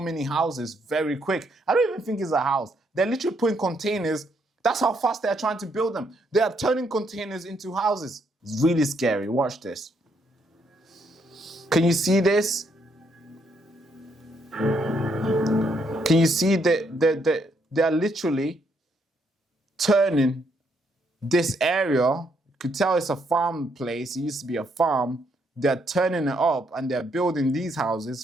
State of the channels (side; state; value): both; normal; correlation 0.73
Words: houses very quick. I don't even think it's a house. They're literally putting containers. That's how fast they're trying to build them. They are turning containers into houses. It's really scary. Watch this. Can you see this? Can you see that they're literally turning this area? You could tell it's a farm place. It used to be a farm. They're turning it up and they're building these